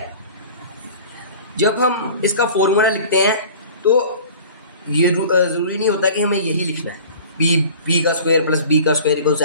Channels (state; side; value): inverted; both; correlation -0.43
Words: जब हम इसका फॉर्मूला लिखते हैं तो ये जरूरी नहीं होता कि हमें यही लिखना है, बी का स्क्वायर प्लस बी का स्क्वायर इक्वल्स